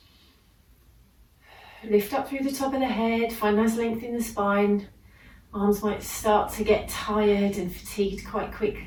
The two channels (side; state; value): both; identical; correlation 1.00